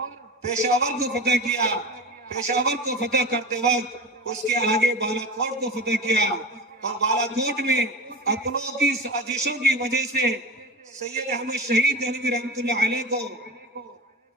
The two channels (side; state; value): both; normal; correlation 0.28